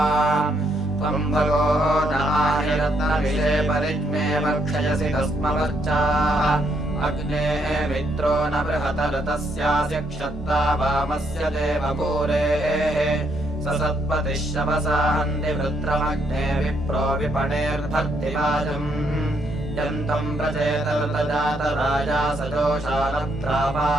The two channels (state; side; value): normal; both; correlation 0.74